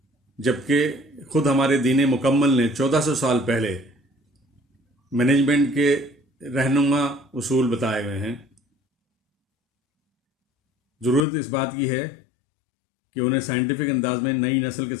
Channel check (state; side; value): drops out; right; at 11.2 s